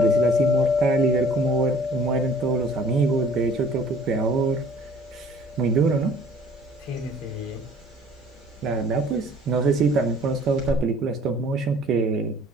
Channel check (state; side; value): normal; both; correlation 0.53